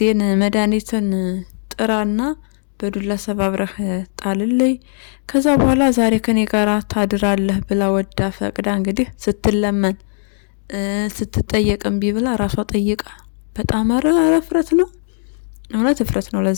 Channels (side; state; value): right; silent; 67 dB below the other